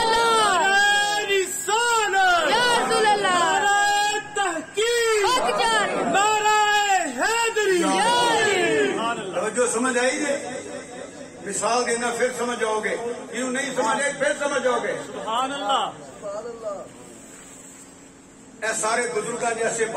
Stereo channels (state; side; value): identical; both; correlation 1.00